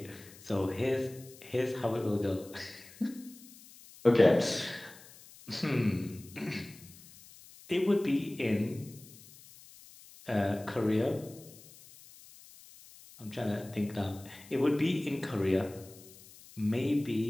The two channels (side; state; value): left; noise; hiss, 21 dB below the sound